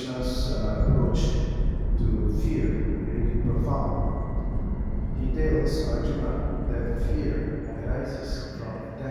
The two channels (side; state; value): both; identical; correlation 1.00